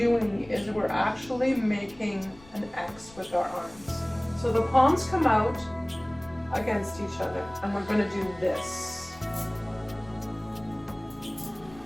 is we're actually making an X with our arms. So the palms come out against each other and we're going to do this.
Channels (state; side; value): noise; left; rumble, 23 dB below the sound